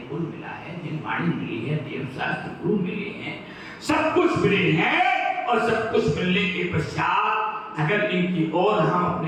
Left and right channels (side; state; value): both; identical; correlation 1.00